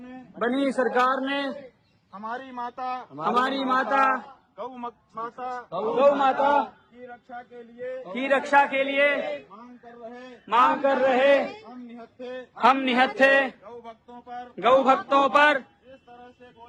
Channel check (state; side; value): identical; both; correlation 1.00